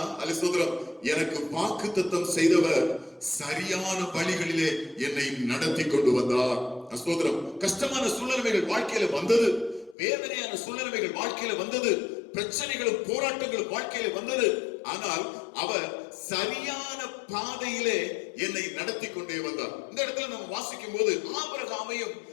அல்ல சோதரம், எனக்கு வாக்குத்தத்தம் செய்தவர் சரியான வழிகளிலே என்னை நடத்தி கொண்டு வந்தார். சோதரம், கஷ்டமான சூழ்நிலைகள் வாழ்க்கையில வந்தது, வேதனையான சூழ்நிலைகள் வாழ்க்கையில வந்தது, பிரச்சனைகளும் போராட்டங்களும் வாழ்க்கையில வந்தது. ஆனால் அவர் சரியான பாதையிலே என்னை நடத்தி கொண்டே வந்தார். இந்த இடத்துல நம்ம வாசிக்கும் போது ஆபிரகாமையும்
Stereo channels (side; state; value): right; drops out; at 10.0 s